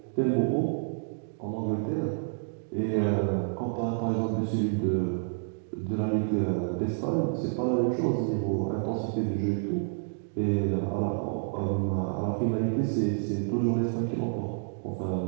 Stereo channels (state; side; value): silent; left; digital silence